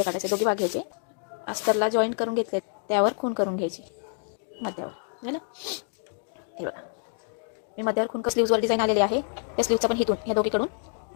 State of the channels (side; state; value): right; silent; 56 dB below the other